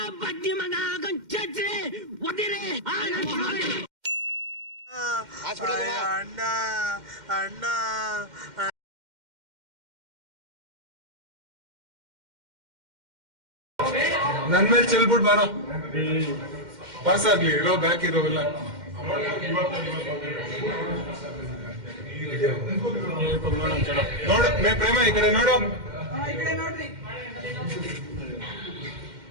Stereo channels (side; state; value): left; late; 2.1 ms